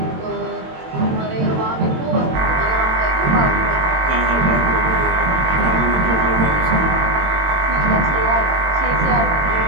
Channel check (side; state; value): left; late; 22 ms